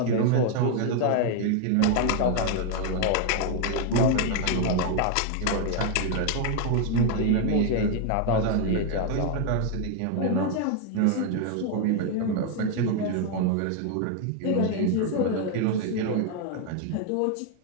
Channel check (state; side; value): different; both; correlation 0.00